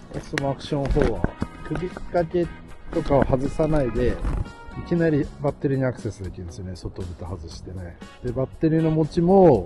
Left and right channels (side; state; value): both; identical; correlation 1.00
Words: オスモアクション4は首掛けとかを外さないで、いきなりバッテリーにアクセスできるんですよね。外蓋外してね。で、バッテリーの持ち